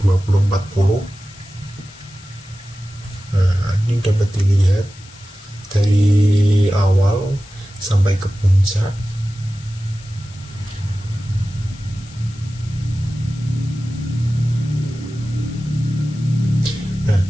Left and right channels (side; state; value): left; noise; hiss, 22 dB below the sound